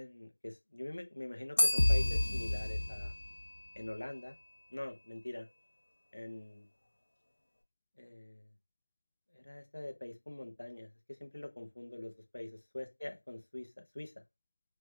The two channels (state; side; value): inverted; both; correlation -1.00